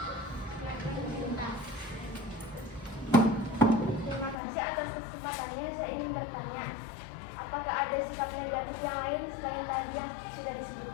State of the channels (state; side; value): drops out; right; at 4.4 s